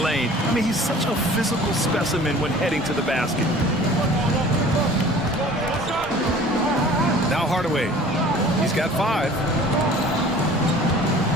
I mean, he's such a physical specimen when heading to the basket. Now Hardaway. He's got 5.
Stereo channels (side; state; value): both; normal; correlation 0.47